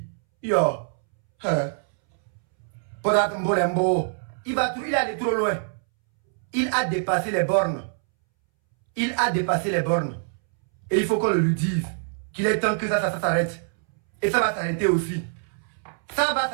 Yo, Podat Mbolembo, il est allé trop loin. Il a dépassé les bornes. Il a dépassé les bornes. Et il faut qu'on le lui dise qu'il est temps que ça s'arrête. Et ça va s'arrêter aussi. Ça va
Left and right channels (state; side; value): silent; left; 62 dB below the other